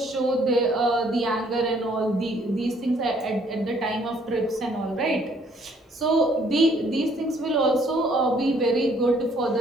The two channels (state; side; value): normal; both; correlation 0.63